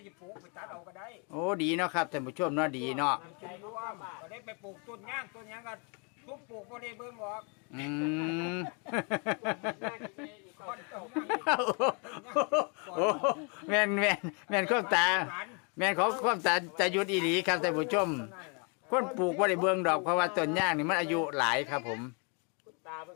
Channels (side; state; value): right; quieter; 35.7 dB